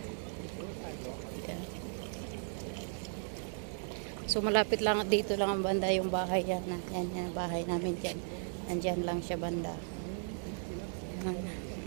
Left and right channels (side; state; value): left; silent; digital silence